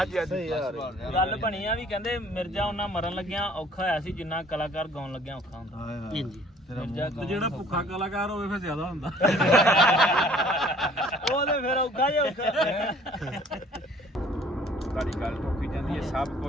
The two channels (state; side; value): normal; both; correlation 0.54